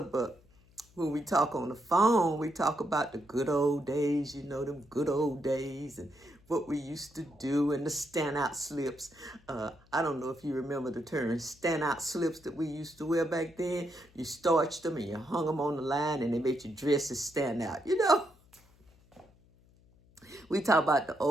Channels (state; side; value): noise; left; hum, 29 dB below the sound